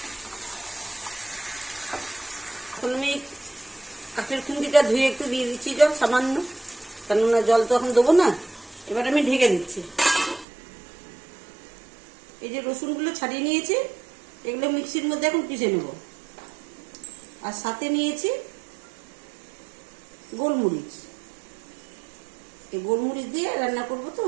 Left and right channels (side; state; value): left; drops out; at 10.5 s